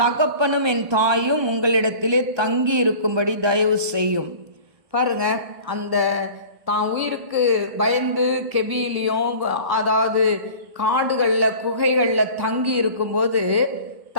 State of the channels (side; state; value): left; late; 1.2 ms